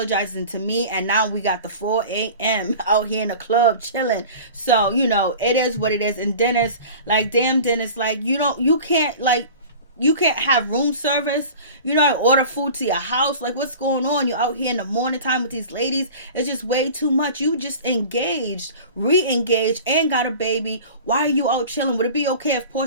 to me, and now we got the 4 a.m. out here in the club chilling. So, you know, it is what it is. And Dennis, like, damn Dennis, like, you can't have room service. You know, order food to your house. Like, what's going on? You're out here in the morning time with these ladies. It's just way too much. You just engaged, re-engaged, and got a baby. Why are you out chilling? Would it be okay if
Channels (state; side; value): inverted; both; correlation -0.39